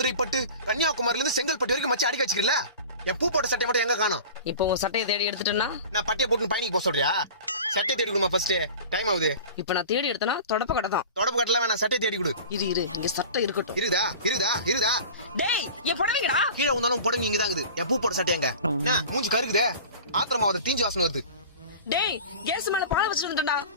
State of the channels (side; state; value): both; inverted; correlation -0.37